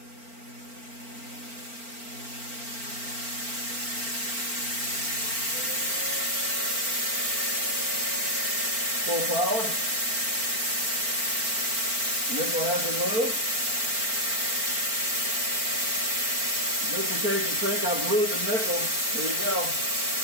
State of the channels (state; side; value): late; left; 4.4 ms